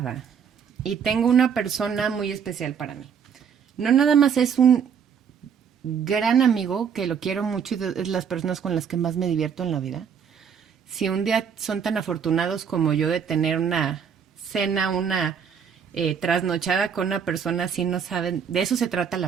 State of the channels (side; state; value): left; quieter; 7.3 dB